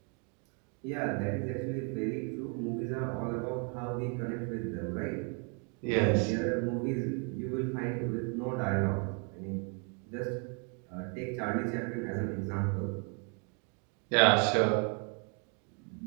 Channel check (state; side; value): quieter; left; 38.2 dB